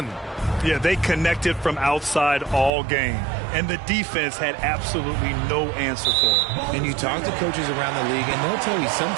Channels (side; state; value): left; drops out; at 2.7 s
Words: Yeah, they connected from outside all game, and the defense had absolutely no answer for it. And you talk to coaches around the league, and they'll tell you